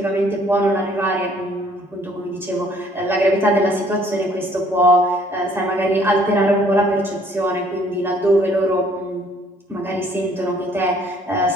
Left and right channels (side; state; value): both; normal; correlation 0.61